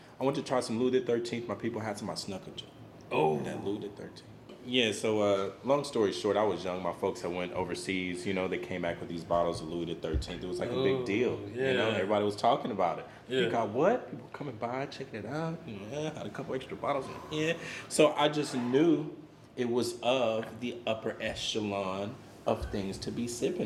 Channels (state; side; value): identical; both; correlation 1.00